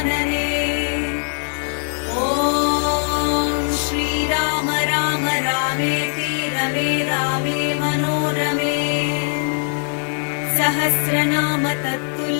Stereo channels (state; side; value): silent; right; digital silence